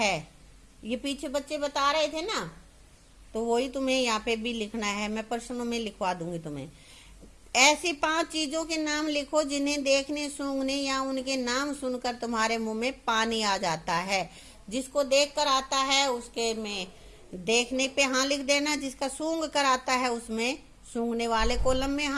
ये पीछे बच्चे बता रहे थे ना, तो वही तुम्हें यहाँ पे भी लिखना है। मैं प्रश्नों में लिखवा दूंगी तुम्हें। ऐसी 5 चीजों के नाम लिखो जिन्हें देखने, सूंघने या उनके नाम सुनकर तुम्हारे मुंह में पानी आ जाता है। जिसको देख कर आता है उसके में देखने पे हाँ लिख देना, जिसका सूंघ कर आता है उसमें सूंघने वाले कॉलम में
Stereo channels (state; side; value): identical; both; correlation 1.00